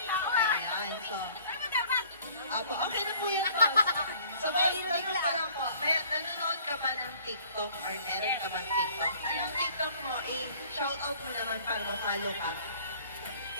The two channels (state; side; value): inverted; both; correlation -0.54